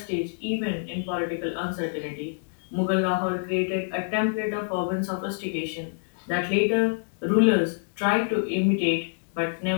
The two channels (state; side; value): silent; right; digital silence